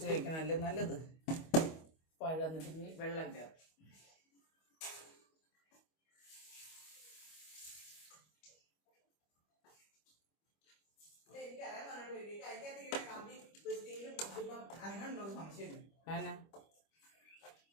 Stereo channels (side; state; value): right; late; 25 ms